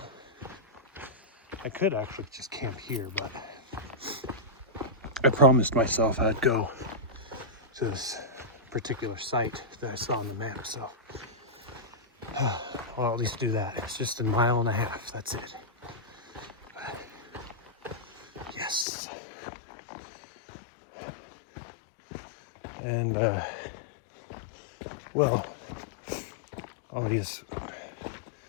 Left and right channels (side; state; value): right; drops out; at 18.9 s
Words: I could actually just camp here, but I promised myself I'd go to this particular site that I saw on the map. So I'll at least do that. It's just a mile and a half. That's it. But, yes. And well, all these